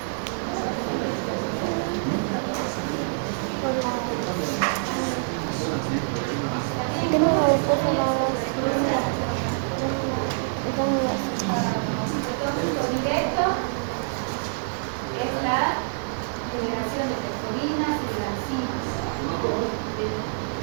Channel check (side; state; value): left; silent; digital silence